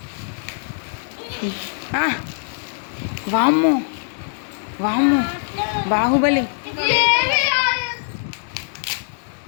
వామ్మో వామ్మో, బాహుబలి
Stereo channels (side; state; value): right; silent; digital silence